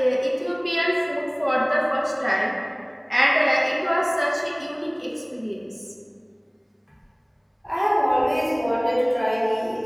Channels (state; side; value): identical; both; correlation 1.00